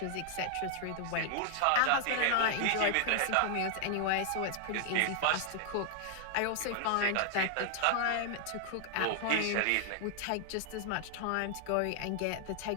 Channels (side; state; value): both; different; correlation 0.00